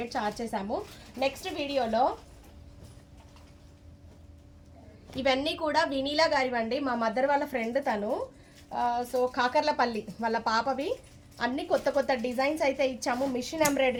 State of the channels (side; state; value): both; identical; correlation 1.00